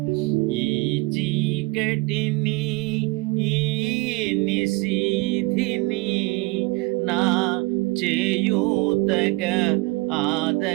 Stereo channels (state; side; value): quieter; left; 23.9 dB